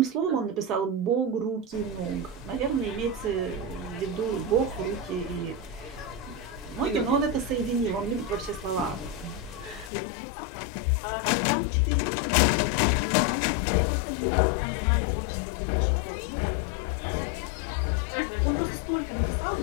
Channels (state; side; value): drops out; right; at 9.9 s